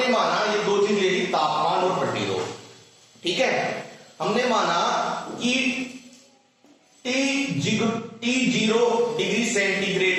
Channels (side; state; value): both; identical; correlation 1.00